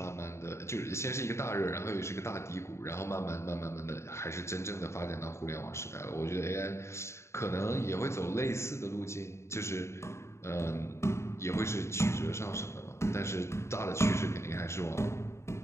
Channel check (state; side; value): late; right; 0.13 ms